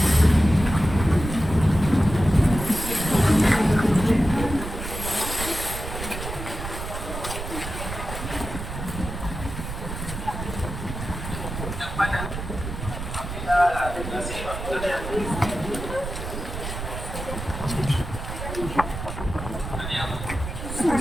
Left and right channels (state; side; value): noise; right; rumble, 7 dB below the sound